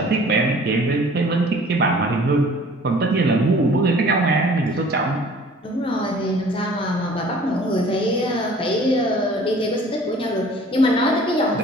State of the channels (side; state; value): both; normal; correlation 0.50